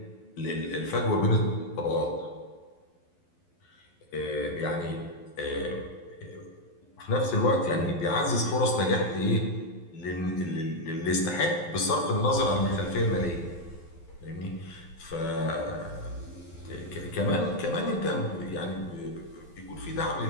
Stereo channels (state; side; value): late; right; 11 ms